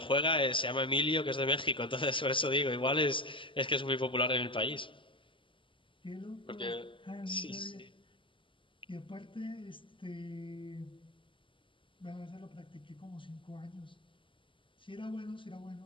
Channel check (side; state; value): right; late; 0.25 ms